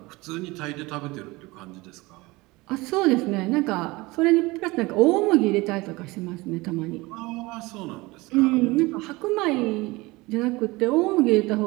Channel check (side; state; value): left; quieter; 22.2 dB